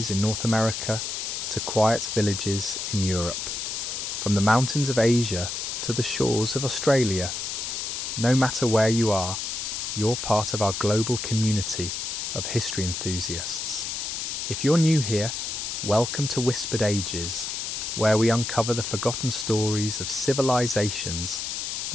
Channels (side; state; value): left; noise; hiss, 4 dB below the sound